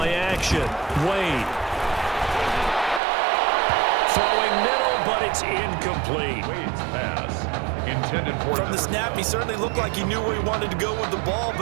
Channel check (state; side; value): drops out; left; at 3.0 s